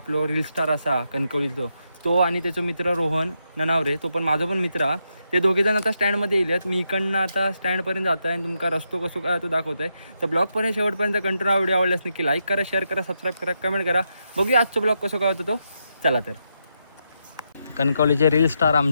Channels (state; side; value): inverted; both; correlation -0.83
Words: रील स्टार असा कणकवलीचो, तो आणि त्याचा मित्र रोहन ननावरे, तो पण माझा पण मित्र हा. ते दोघेजण आता स्टँडमध्ये येईल. मी इकडनं आता स्टँडपर्यंत जातो आहे आणि तुमका रस्तो कसो काय तो दाखवतो आहे. तर ब्लॉगपर्यंत शेवटपर्यंत कंटिन्यू व्हिडिओ आवडल्यास नक्की लाईक करा, शेअर करा, सबस्क्राईब करा, कमेंट करा. बघूया आजचा ब्लॉग कसं काय होतो तो. चला तर. कणकवलीचे रील स्टार